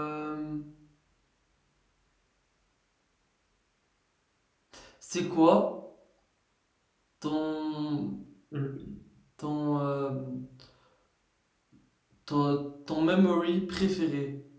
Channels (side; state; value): both; identical; correlation 1.00